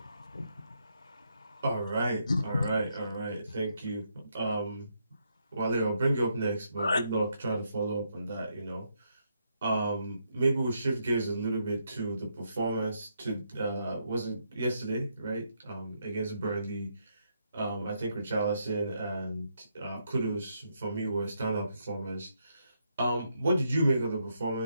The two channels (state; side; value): inverted; both; correlation -0.78